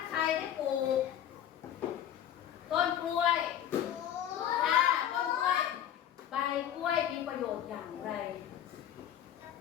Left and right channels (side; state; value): right; quieter; 10.5 dB